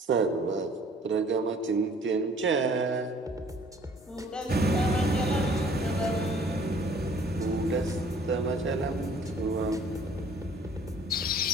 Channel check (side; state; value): both; normal; correlation 0.55